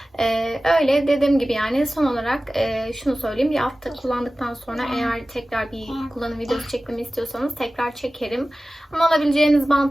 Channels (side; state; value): both; normal; correlation 0.96